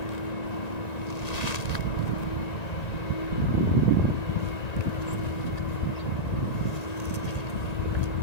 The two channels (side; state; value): right; late; 1.9 ms